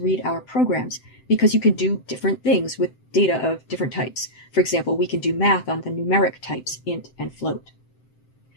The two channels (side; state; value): right; late; 7.8 ms